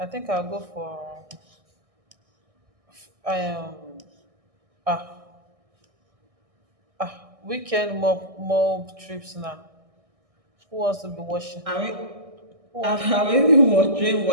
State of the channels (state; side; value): late; left; 1.6 ms